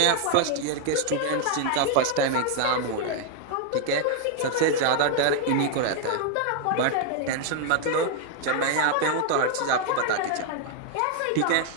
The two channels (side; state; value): both; different; correlation 0.00